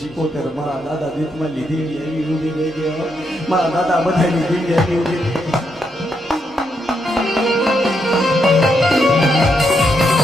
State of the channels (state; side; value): normal; both; correlation 0.80